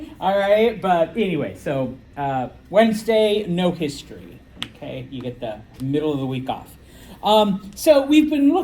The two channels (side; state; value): both; identical; correlation 1.00